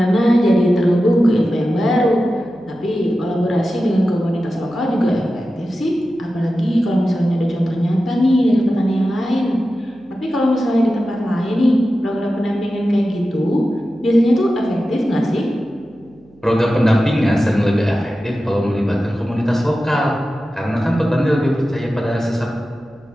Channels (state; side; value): noise; right; hum, 29 dB below the sound